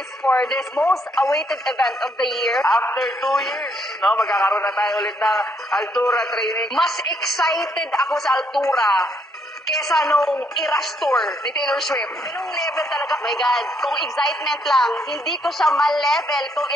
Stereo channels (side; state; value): both; normal; correlation 0.71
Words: for this most awaited event of the year. After 2 years, magkakaroon na tayo ulit ng Altura training. Mas excited ako sa Altura kesa nung Eras Tour ni Taylor Swift. Ganung level talaga. My God, kung excitement lang, hindi ko siya ma-level kung